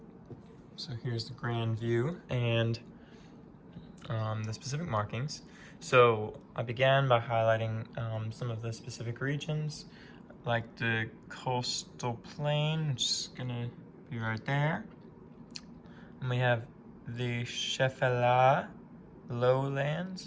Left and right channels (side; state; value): both; identical; correlation 1.00